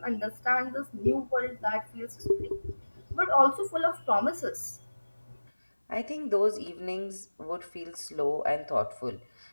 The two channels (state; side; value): inverted; both; correlation -1.00